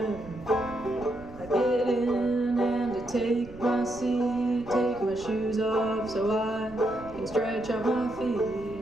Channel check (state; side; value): noise; right; rumble, 18 dB below the sound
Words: I get in and I take my seat, take my shoes off so I can stretch out my